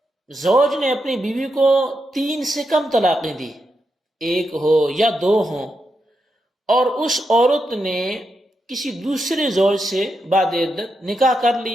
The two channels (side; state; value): both; normal; correlation 0.85